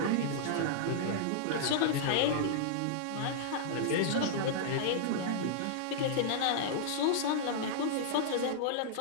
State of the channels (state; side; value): different; both; correlation -0.01